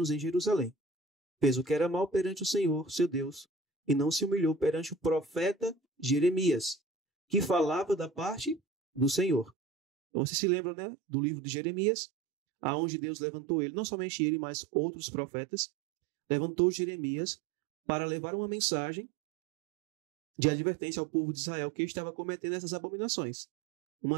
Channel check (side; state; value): left; drops out; at 9.5 s